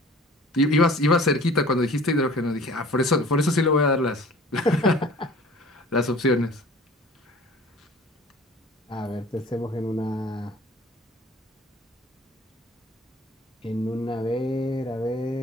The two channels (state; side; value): normal; both; correlation 0.47